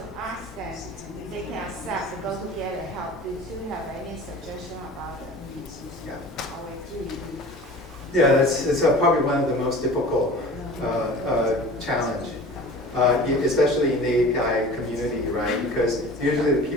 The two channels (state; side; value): normal; both; correlation 0.40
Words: ask them if they can accept to go to get the help? Do you have any suggestion about it? Yeah, it's probably one of the most difficult challenge, especially in the API community, right? Because usually the